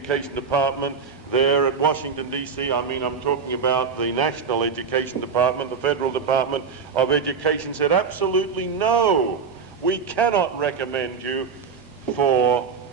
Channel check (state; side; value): quieter; left; 5.8 dB